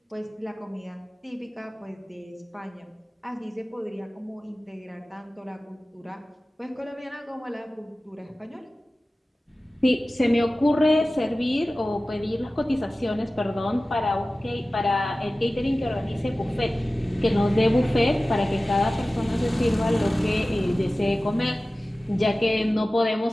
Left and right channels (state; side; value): normal; both; correlation 0.96